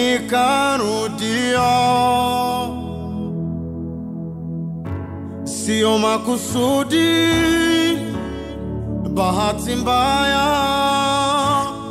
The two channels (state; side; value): identical; both; correlation 1.00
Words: Sio makusudi, bahati mbaya.